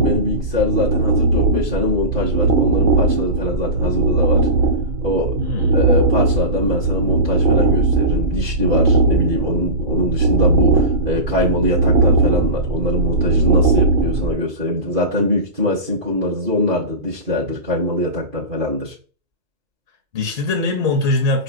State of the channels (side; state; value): left; late; 2.4 ms